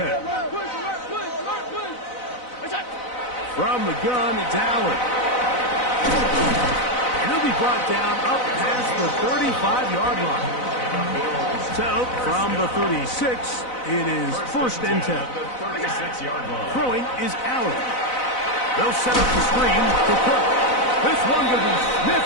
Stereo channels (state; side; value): late; right; 4.0 ms